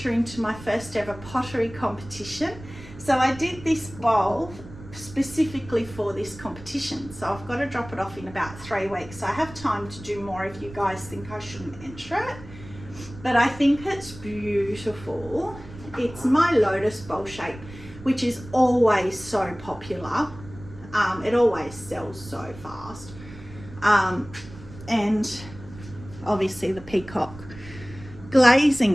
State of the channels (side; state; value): right; noise; rumble, 16 dB below the sound